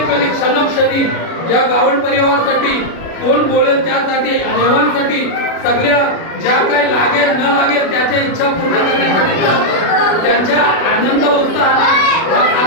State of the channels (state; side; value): late; right; 36 ms